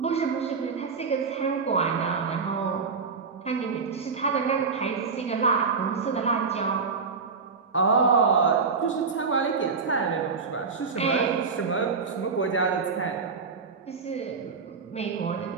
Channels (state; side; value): quieter; left; 5.1 dB